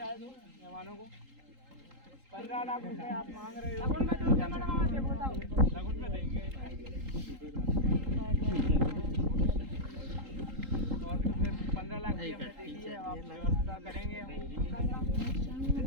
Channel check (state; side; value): late; left; 3.8 ms